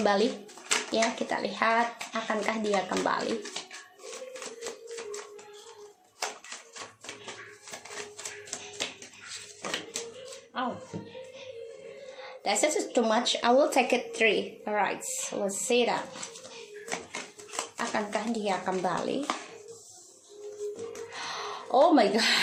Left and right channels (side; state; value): both; identical; correlation 1.00